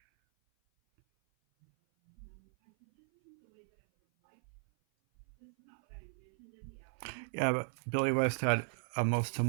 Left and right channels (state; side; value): silent; left; 54 dB below the other